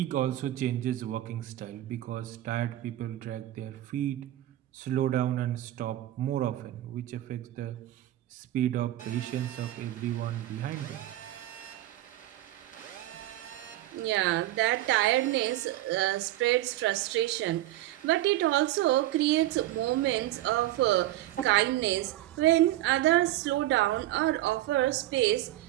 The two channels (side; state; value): left; quieter; 15.0 dB